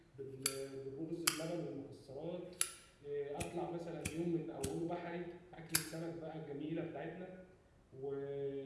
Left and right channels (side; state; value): both; identical; correlation 1.00